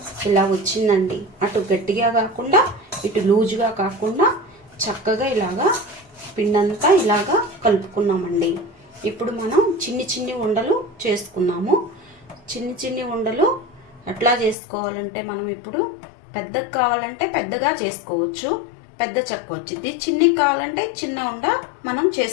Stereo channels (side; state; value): right; drops out; at 14.6 s